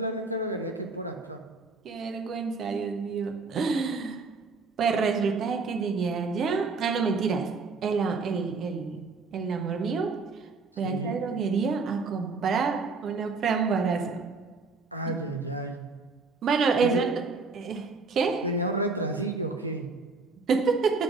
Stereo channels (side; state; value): left; quieter; 4.2 dB